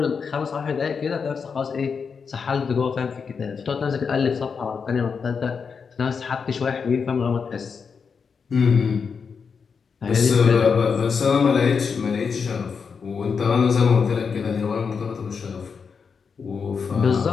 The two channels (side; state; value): right; quieter; 5.8 dB